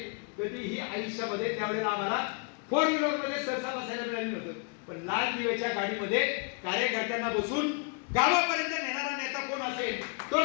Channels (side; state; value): right; quieter; 36.7 dB